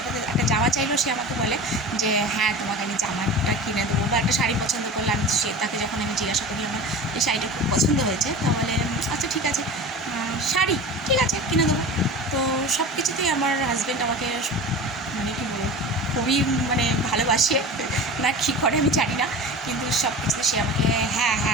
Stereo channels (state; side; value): normal; both; correlation 0.33